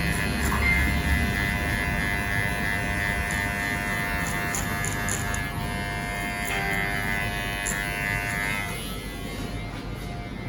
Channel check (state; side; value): identical; both; correlation 1.00